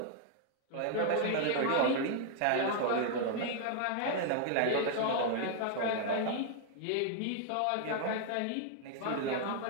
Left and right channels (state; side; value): different; both; correlation 0.00